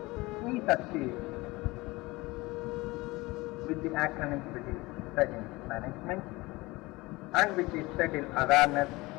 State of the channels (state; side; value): quieter; right; 21.8 dB